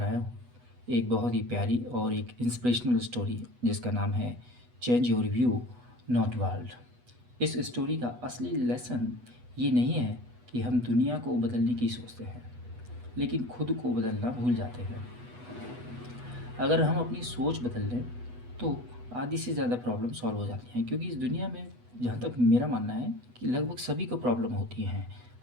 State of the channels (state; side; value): late; left; 8.2 ms